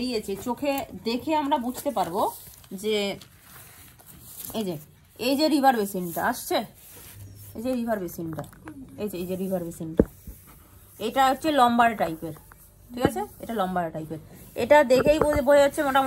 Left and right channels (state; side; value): identical; both; correlation 1.00